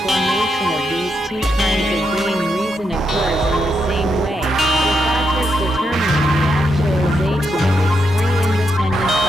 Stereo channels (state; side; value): normal; both; correlation 0.82